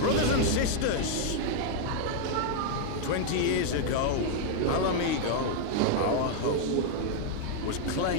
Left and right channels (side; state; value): both; different; correlation 0.00